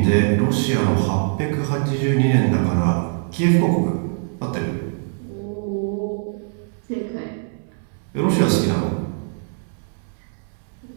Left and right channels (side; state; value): left; silent; 64 dB below the other